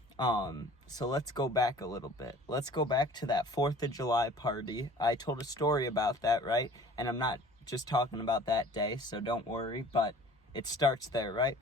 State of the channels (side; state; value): both; normal; correlation 0.47